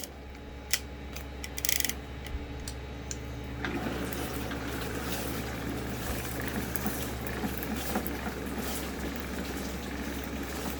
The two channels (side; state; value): both; identical; correlation 1.00